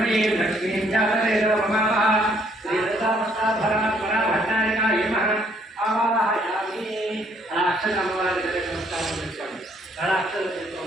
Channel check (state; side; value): normal; both; correlation 0.66